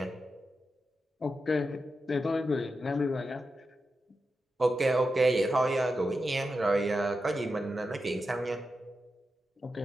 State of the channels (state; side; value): normal; both; correlation 0.89